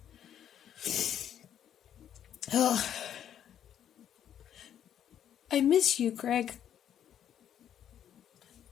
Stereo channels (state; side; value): quieter; right; 9.9 dB